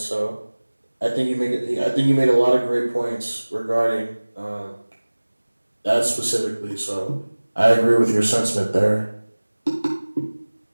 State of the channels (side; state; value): both; inverted; correlation -1.00